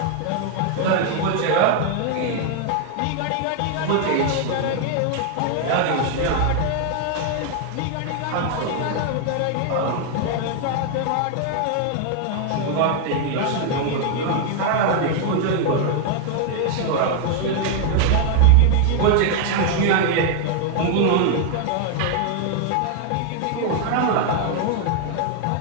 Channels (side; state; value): both; different; correlation 0.00